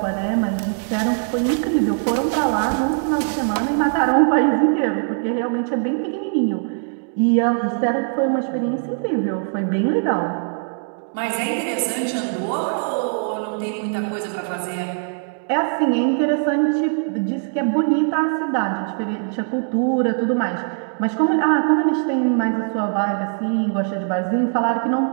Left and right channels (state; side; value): silent; left; 65 dB below the other